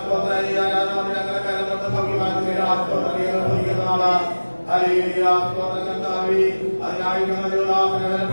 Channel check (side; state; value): both; inverted; correlation -1.00